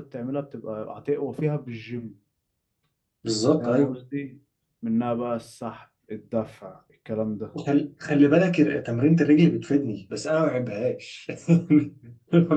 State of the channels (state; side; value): identical; both; correlation 1.00